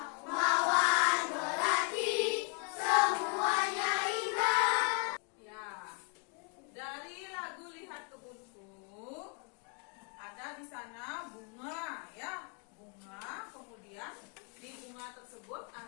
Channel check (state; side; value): quieter; right; 37.5 dB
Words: mawar melati, semuanya indah. Ya, dari lagu Lihat Kebunku ada di sana bunga ya, bunga. Kemudian di bunga tersebut